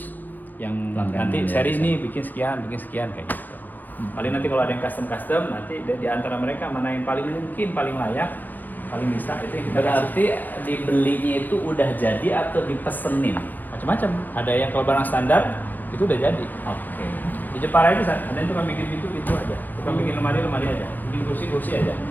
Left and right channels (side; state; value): right; late; 0.089 ms